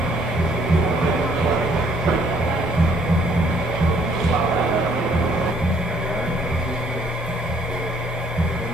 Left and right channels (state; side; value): normal; both; correlation 0.64